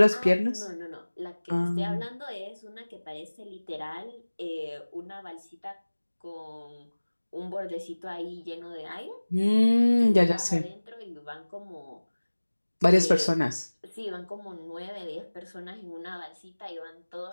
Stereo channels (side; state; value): both; inverted; correlation -1.00